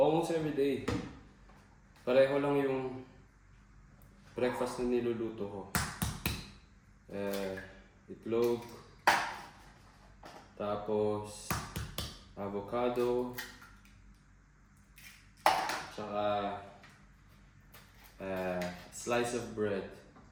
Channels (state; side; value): identical; both; correlation 1.00